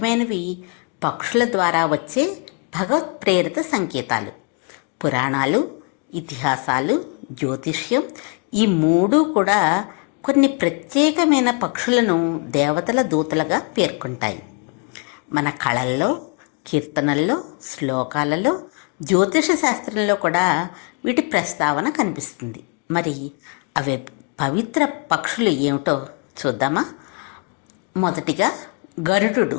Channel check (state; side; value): quieter; right; 34.7 dB